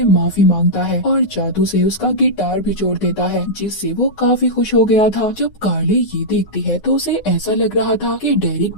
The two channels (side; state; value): right; late; 9.6 ms